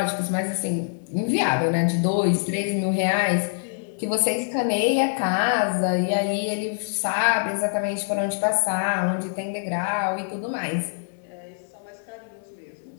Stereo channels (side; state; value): right; silent; digital silence